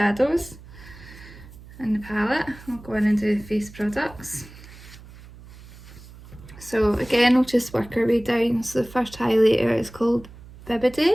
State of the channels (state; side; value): noise; right; hum, 19 dB below the sound